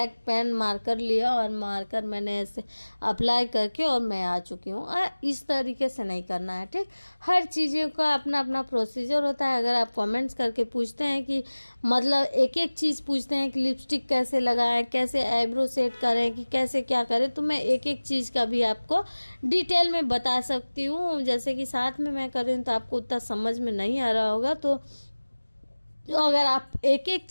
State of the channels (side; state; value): both; inverted; correlation -1.00